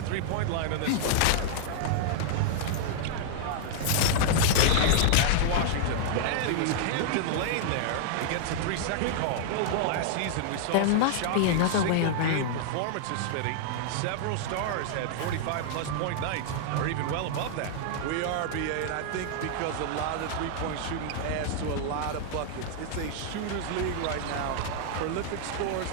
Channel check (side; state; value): both; different; correlation -0.01